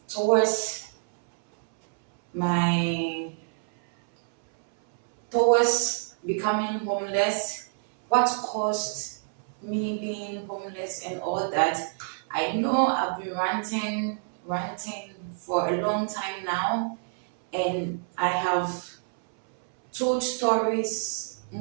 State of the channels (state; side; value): silent; left; 60 dB below the other